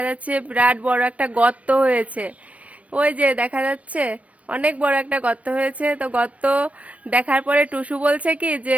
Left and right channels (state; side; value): late; left; 0.067 ms